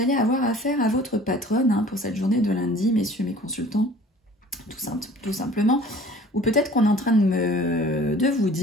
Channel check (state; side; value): normal; both; correlation 0.48